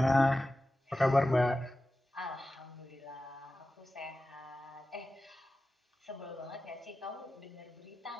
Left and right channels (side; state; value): both; normal; correlation 0.94